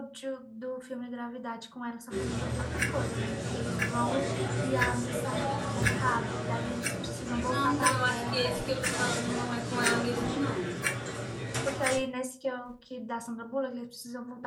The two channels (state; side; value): identical; both; correlation 1.00